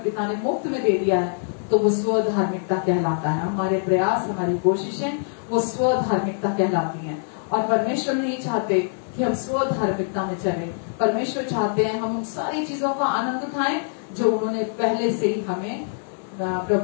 पिता ने मुफ्त में दे दिया है, तो वो स्वधार्मिकता कहलाता है। हमारे प्रयास, हमारी कोशिशें वो स्वधार्मिकता कहलाती हैं। और परमेश्वर नहीं चाहते कि हम स्वधार्मिकता में चलें। परमेश्वर चाहते हैं हम उन सारी चीजों का आनंद उठाएं जो उन्होंने पहले से ही हमें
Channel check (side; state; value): right; silent; digital silence